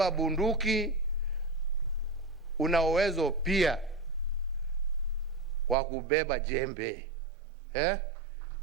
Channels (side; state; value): left; drops out; at 5.8 s